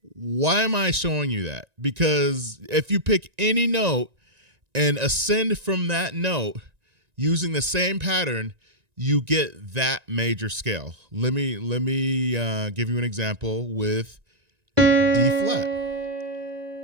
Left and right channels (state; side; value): late; left; 1.9 ms